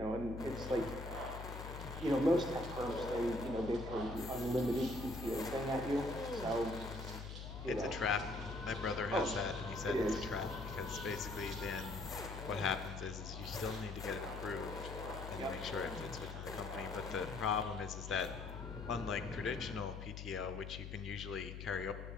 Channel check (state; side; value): noise; left; hum, 8 dB below the sound